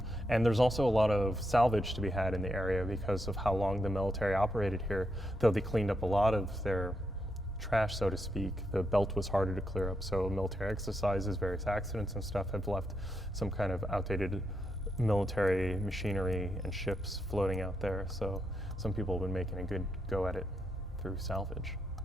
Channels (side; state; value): both; normal; correlation 0.81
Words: And there's also a lot of salvage to be had in the area because of how long the military operated here. Though they cleaned up a lot of their trash, so to speak, the belt was harder to clear up. So military exercises, various accidents and stuff have left some kind of outdated military machinery and ships floating out there. So some people have been making a good go at it through salvage.